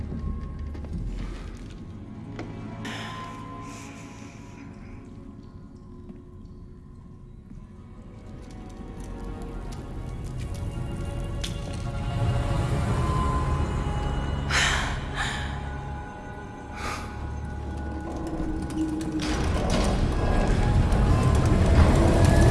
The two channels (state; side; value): identical; both; correlation 1.00